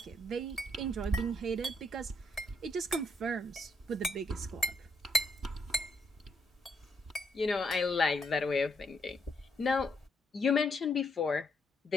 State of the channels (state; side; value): normal; both; correlation 0.74